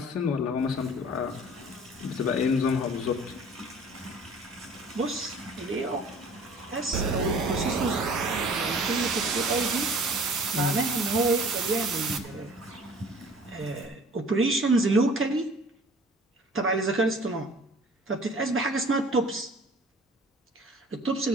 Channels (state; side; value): normal; both; correlation 0.49